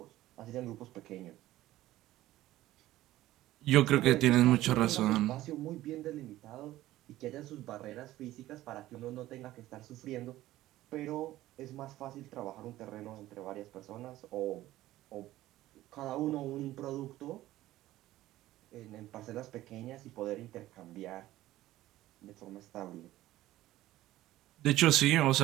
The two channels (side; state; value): left; quieter; 15.5 dB